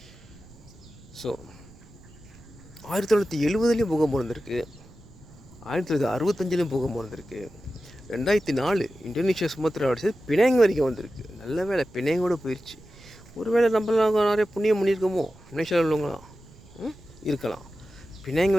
ஸோ 1970லேயும் பூகம்பம் இருந்திருக்கு, 1965லேயும் பூகம்பம் இருந்திருக்கு, 2004 இந்தோனேஷியா சுமத்ரா அடிச்சது பினாங் வரைக்கும் வந்திருக்கு. நல்ல வேலை பினாங்கோடு போயிடுச்சு. ஒரு வேளை நம்மளாம் நிறைய புண்ணியம் பண்ணியிருக்கோமோ, மலேசியாவில் உள்ளவங்களாம் இருக்கலாம். பினாங்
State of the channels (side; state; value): right; noise; rumble, 22 dB below the sound